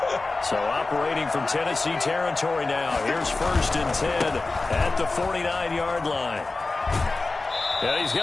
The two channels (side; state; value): right; quieter; 3.5 dB